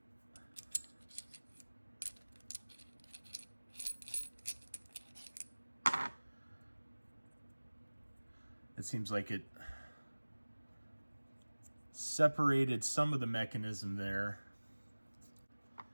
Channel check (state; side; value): inverted; both; correlation -1.00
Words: It seems like it separated some of the mechanism there.